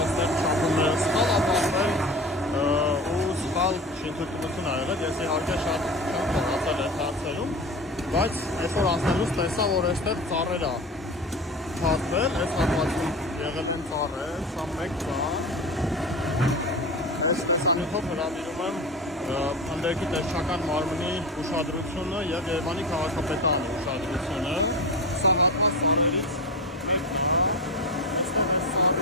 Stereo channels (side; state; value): both; normal; correlation 0.28